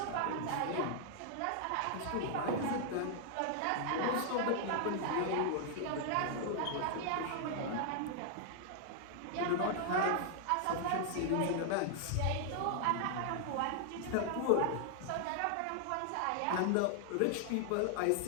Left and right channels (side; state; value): both; different; correlation 0.00